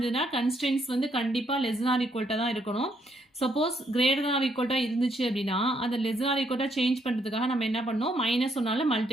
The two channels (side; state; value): both; normal; correlation 0.72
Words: கன்ஸ்ட்ரெயின்ஸ் வந்து கண்டிப்பாக லெஸ் ஆர் ஈக்குவல்ட்டாக தான் இருக்கணும். சப்போஸ் கிரேட்டர் ஆர் ஈக்குவல்ட்டாக இருந்துச்சு அப்படின்னா அதை லெஸ் ஆர் ஈக்குவல்ட்டாக சேஞ்ச் பண்ணுறதுக்காக நம்ம என்ன பண்ணோம், -1